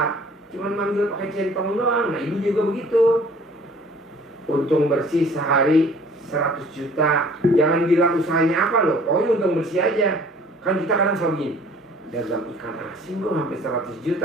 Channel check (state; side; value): normal; both; correlation 0.53